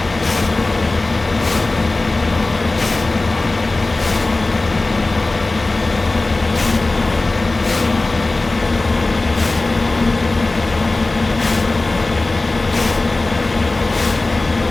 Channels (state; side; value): quieter; right; 3.1 dB